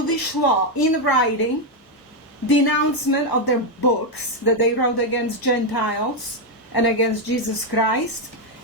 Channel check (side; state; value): both; normal; correlation 0.03